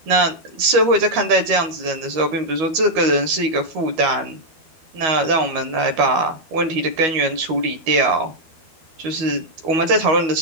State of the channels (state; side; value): late; left; 13 ms